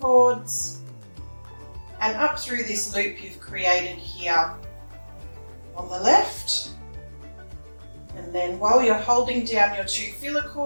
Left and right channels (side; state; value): both; inverted; correlation -1.00